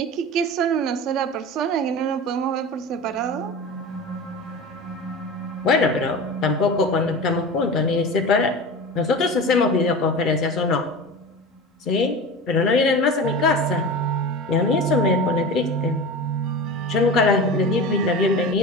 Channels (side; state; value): both; normal; correlation 0.30